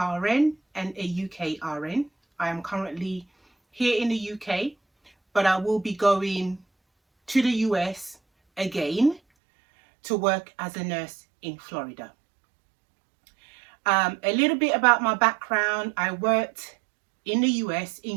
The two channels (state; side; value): drops out; left; at 9.2 s